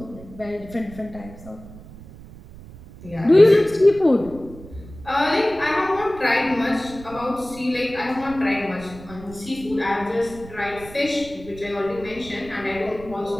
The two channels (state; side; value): noise; right; rumble, 17 dB below the sound